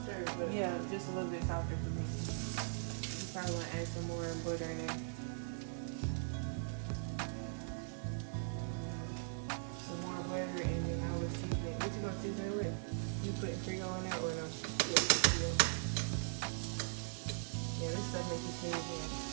But yeah, just a little bit softer for me. You probably want to add some more butter in there. Some more butter, and then I will season it. What you gonna season it with? You putting Creole in there or no? Yeah, this stuff make you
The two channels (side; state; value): left; silent; digital silence